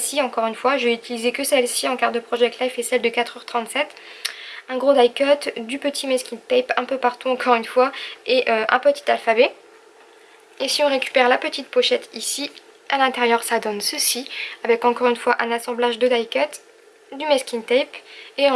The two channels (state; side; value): identical; both; correlation 1.00